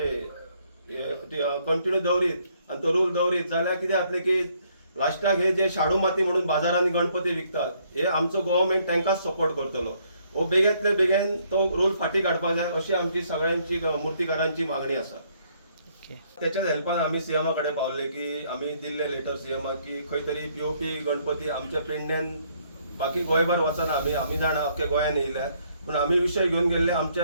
कंटिन्यू दवरीत आनी तो रूल दवरीत जाल्यार कितें जातलें की लास्टाक हे जे शाडू माती म्हणून बाजारांनी गणपती विकतात हे आमचो गव्हर्मेंट तांकांच सपोर्ट करतलो। वो बेगेंतले बेगीन तो रूल फाटी काडपाक जाय अशी आमची सगळ्यांची मुर्तीकारांची मागणी आसा। त्याच्याच हेल्पान आमी सीएमा कडेन पावले की आमी दिल्ले लेटर सीएमाक की खंय तरी POP गणपती आमच्या पेडण्यान बाकी गोंयभर वचना, आमी जाणा अख्ख्या गोंयान येयल्या, पूण आमी विशय घेवन गेल्ले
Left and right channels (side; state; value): both; inverted; correlation -0.68